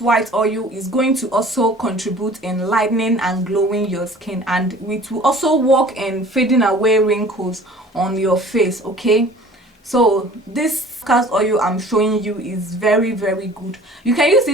white oil is going to also contribute in lightening and glowing your skin, and it will also work in fading away wrinkles on your face. Okay, so this castor oil I'm showing you is very good. You can use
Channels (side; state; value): both; normal; correlation 0.48